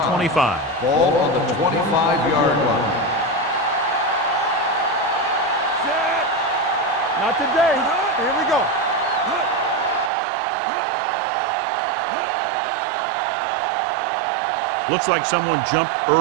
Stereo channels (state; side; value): drops out; left; at 10.1 s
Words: 25. Ball on the 25-yard line. Not today. Here we go. Looks like someone jumped